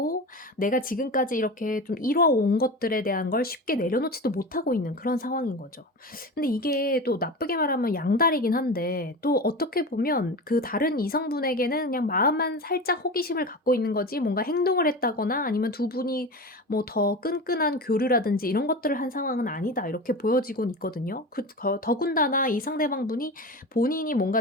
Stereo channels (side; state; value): both; normal; correlation 0.28